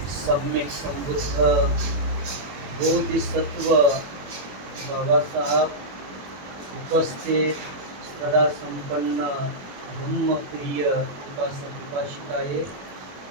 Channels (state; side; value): late; left; 21 ms